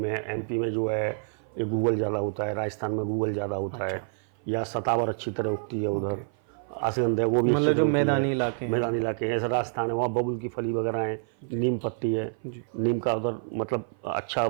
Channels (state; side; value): silent; left; 56 dB below the other